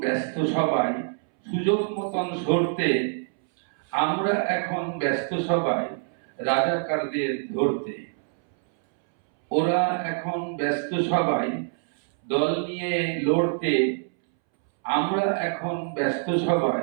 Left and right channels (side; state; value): left; silent; 62 dB below the other